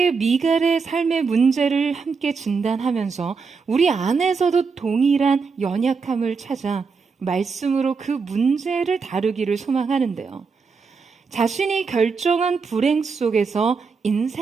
미갈의 삶의 문제를 함께 진단하면서 우리 안에서도 동일한 연약함을 찾아 말씀으로 그 문제를 다루기를 소망하는데요. 자신이 결정한 불행 속에서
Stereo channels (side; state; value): left; quieter; 5.0 dB